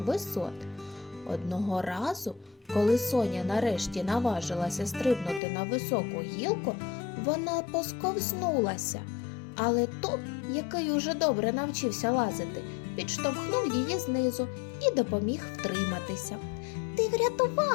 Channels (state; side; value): drops out; right; at 5.4 s